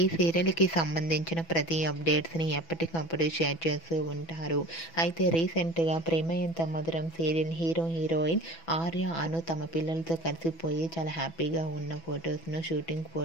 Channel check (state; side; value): late; right; 6.1 ms